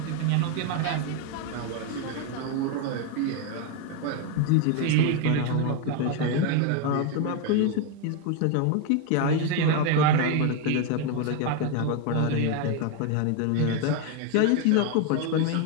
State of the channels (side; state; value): both; different; correlation 0.02